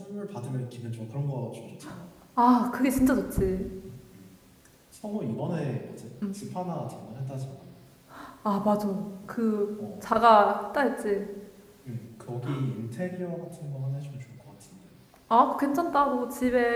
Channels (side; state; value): both; identical; correlation 1.00